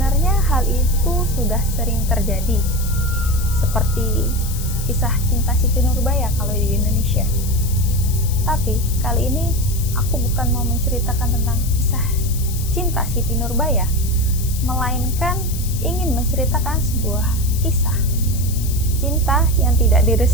hal itu sudah sering terjadi, seperti kisah cinta Siti Nurbaya kalau di Indonesia. Tapi kali ini aku bukan mau menceritakan tentang kisah cinta Siti Nurbaya, melainkan ingin menceritakan sebuah kisah cinta yang tidak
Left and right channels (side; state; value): left; noise; hiss, 11 dB below the sound